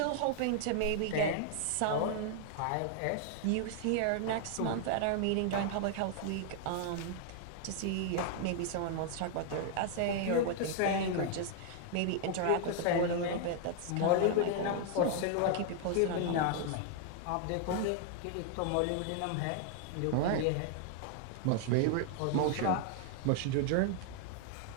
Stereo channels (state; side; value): different; both; correlation 0.00